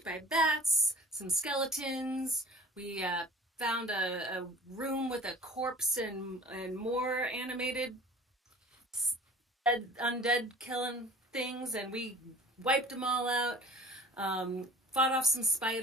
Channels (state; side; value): normal; both; correlation 0.44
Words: by bats, some skeletons. We found a room with a corpse and more animated undead killing things, and we wiped them all out. Fought off some